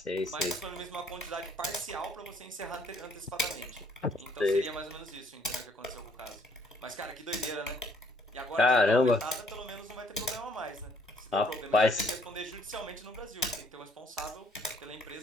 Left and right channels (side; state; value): both; normal; correlation 0.64